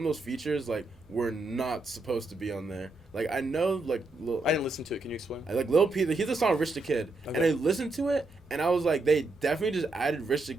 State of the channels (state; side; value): quieter; left; 3.1 dB